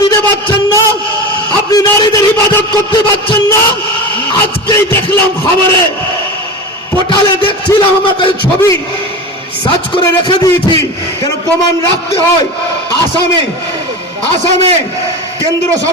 দিতে পারছেন না, আপনি নারীদের হিফাজত করতে পারছেন না। আজকেই দেখলাম খবরে, পোর্টালে দেখছিলাম, আমার কাছে ছবি সার্চ করে রেখে দিয়েছি, কেন প্রমাণ রাখতে হয়। আসামে কেন্দ্র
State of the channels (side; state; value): both; normal; correlation 0.27